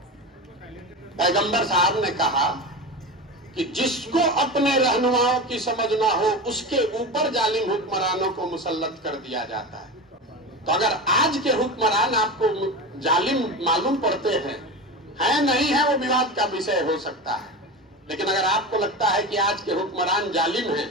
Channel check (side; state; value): both; normal; correlation 0.25